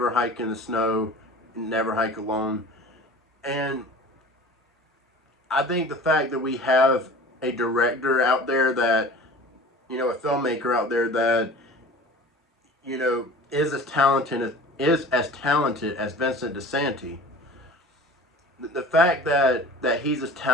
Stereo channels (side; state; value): both; normal; correlation 0.41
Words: Hike in the Snow, Never Hike Alone. And I think the fact that we have a director out there that, a filmmaker out there that, is as talented as Vincent DiSanti. The fact that he's as